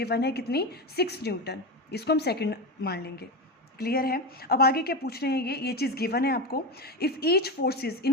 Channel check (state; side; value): normal; both; correlation 0.17